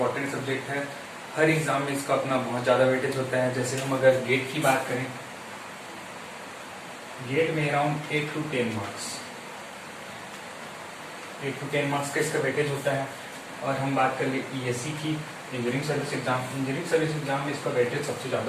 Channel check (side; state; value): both; identical; correlation 1.00